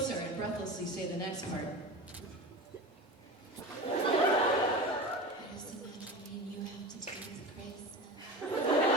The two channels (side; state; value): both; normal; correlation 0.30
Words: and breathlessly say the next part. I just imagine me and you have to deal with Christmas.